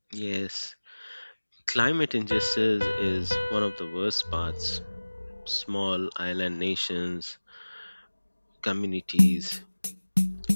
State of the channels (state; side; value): inverted; both; correlation -1.00